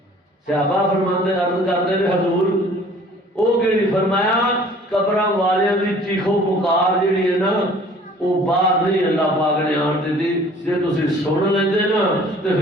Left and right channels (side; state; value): both; normal; correlation 0.52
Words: صحابہ فرماندے عرض کردے نے حضور او کیڑی فرمایا قبراں والیاں دی چیخو پکار جڑی ہے نا وہ باہر نہیں اللہ پاک نے آن دیتی جے تسی سن لیندے نا تے